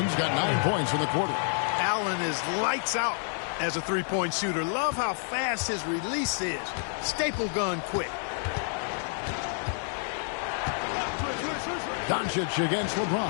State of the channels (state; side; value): silent; right; 58 dB below the other